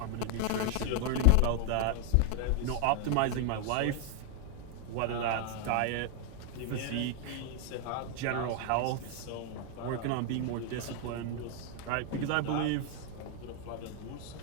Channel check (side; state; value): both; different; correlation 0.00